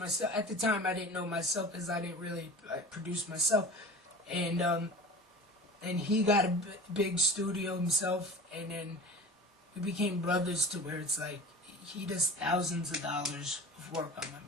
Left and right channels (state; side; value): normal; both; correlation 0.37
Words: at the time I didn't know myself because I didn't really produce myself, and he got a big studio himself, and then we became brothers to where it's like he does thousands of dollars of work on my